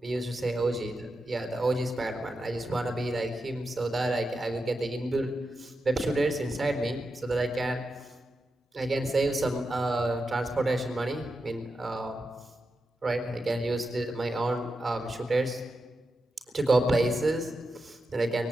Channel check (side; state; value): both; normal; correlation 0.88